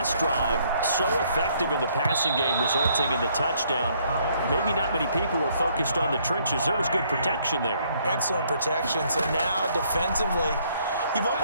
drive, so effective in the passing game, resulting in the touchdown. Maybe not many people were focused on the trenches. There was good protection there. Excellent protection. So now defensively, you've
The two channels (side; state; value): both; inverted; correlation -0.67